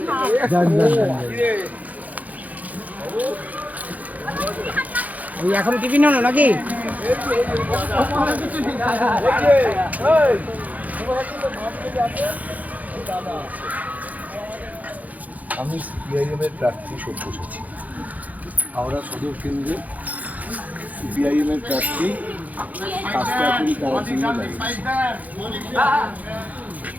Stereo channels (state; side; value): late; left; 0.077 ms